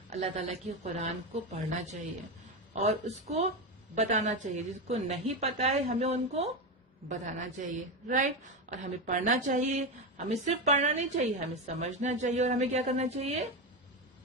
अल्लाह ताला की कुरान को पढ़ना चाहिए और उसको बताना चाहिए. जिसको नहीं पता है हमें उनको बताना चाहिए. राइट? और हमें पढ़ना चाहिए. हमें सिर्फ पढ़ना नहीं चाहिए, हमें समझना चाहिए. और हमें क्या करना चाहिए?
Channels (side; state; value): both; normal; correlation 0.15